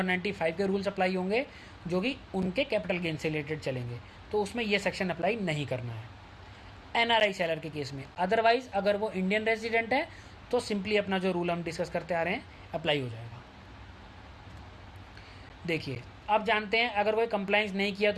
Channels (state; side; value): identical; both; correlation 1.00